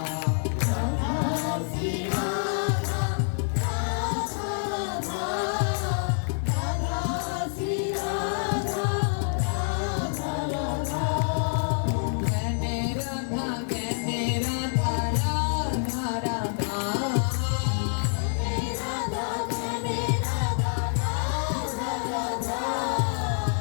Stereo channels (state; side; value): silent; right; 58 dB below the other